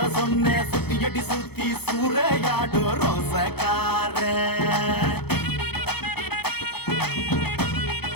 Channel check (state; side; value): late; right; 0.97 ms